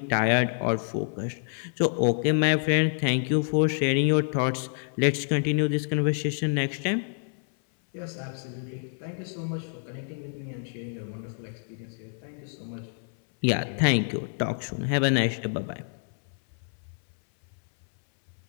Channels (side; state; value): right; silent; 60 dB below the other